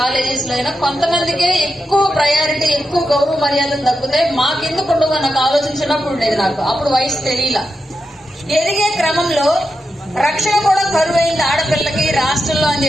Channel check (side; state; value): both; normal; correlation 0.88